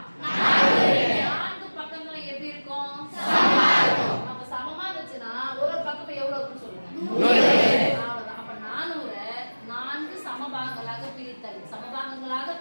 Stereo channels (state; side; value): inverted; both; correlation -1.00